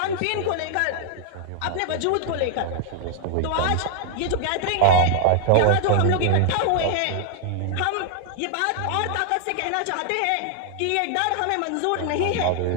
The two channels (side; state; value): both; different; correlation 0.00